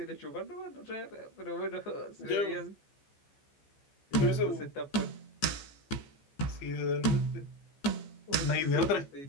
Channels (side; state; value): right; late; 15 ms